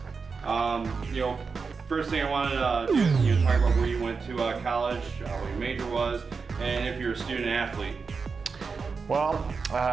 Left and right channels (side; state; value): left; quieter; 5.0 dB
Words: First thing I wanted to do is talk about where you went to college, what your major was, and if you're a student athlete. Well,